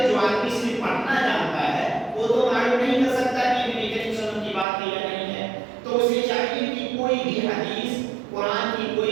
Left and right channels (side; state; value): left; drops out; at 4.7 s